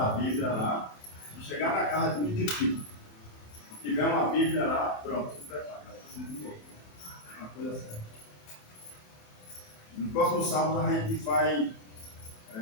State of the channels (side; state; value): right; late; 27 ms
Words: Bíblia lá, se chegar na casa é muito difícil. Se tiver uma Bíblia lá, pronto, se prepara, vai ser muito bom. Uma coisa séria. No próximo sábado a gente vai